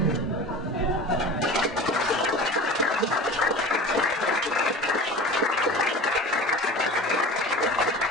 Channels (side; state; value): both; normal; correlation 0.36